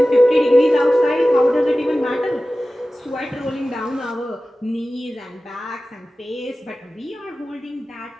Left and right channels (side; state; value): both; normal; correlation 0.96